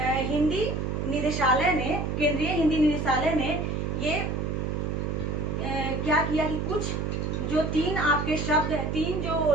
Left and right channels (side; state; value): right; noise; hum, 1 dB below the sound